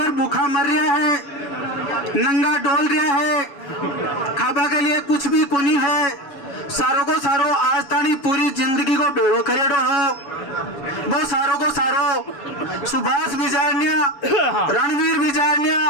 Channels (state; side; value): late; right; 7.0 ms